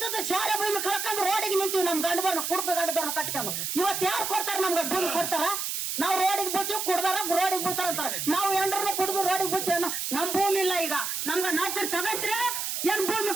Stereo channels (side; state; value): right; noise; hiss, 3 dB below the sound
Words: ಶಾಲೆ ಭೂಮಿ ಕಳ್ಕೊಂಡು ರೋಡಿಗೆ ನಿಂತೀವಿ. ನಮ್ ಗಂಡದವ್ರನ್ನ ಕುಡ್ಕ ಗಂಡದವ್ರನ್ನ ಕಟ್ಕೊಂಡು ಇವತ್ತು ಯಾರು ಕೊಡ್ತಾರ? ನಮ್ಗ ಭೂಮಿ ಕೊಡ್ತಾರ? ನಾವು ರೋಡಿಗೆ ಬೀಳ್ತೀವಿ, ಕುಡ್ದಾರ ರೋಡಿಗೆ ಬೀಳ್ತಾರ ಅಂತಾರ. ನಾವು ಎಂಡ್ರನ್ನ ಕುಡ್ದು ರೋಡಿಗೆ ಬೀಳ್ತೀವಿ. ನಮ್ ಭೂಮಿ ಇಲ್ಲ. ಈಗ ನಮ್ಗ ನಾಲ್ಕು ತಗಂತೀರ, ಏನ್ ಭೂಮಿ